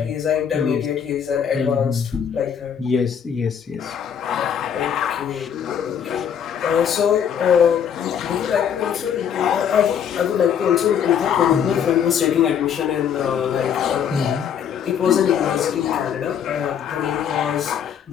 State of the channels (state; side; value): quieter; right; 8.2 dB